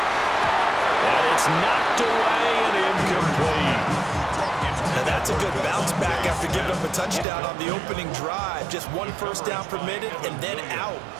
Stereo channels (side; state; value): left; drops out; at 7.2 s